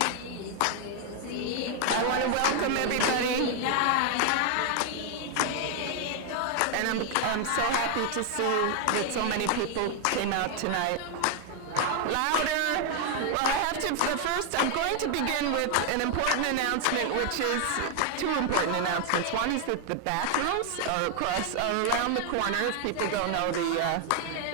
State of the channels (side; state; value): both; different; correlation 0.00